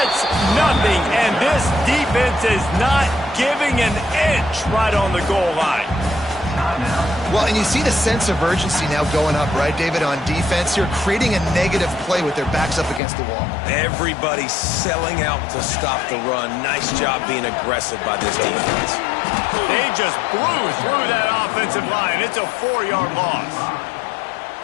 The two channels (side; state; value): right; drops out; at 13.0 s